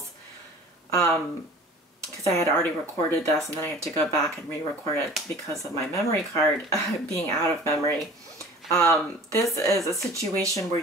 because I had already recorded this and then I had to go back and re-record it because of my memory card being out of memory. This is a situation where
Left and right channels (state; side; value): normal; both; correlation 0.44